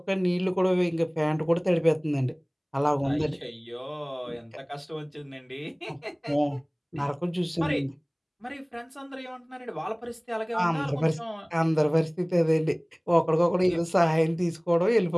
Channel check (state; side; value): identical; both; correlation 1.00